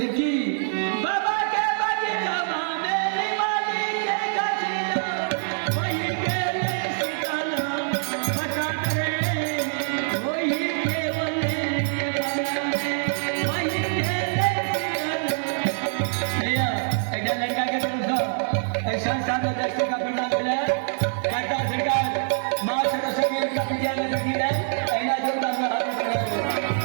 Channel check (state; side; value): silent; left; digital silence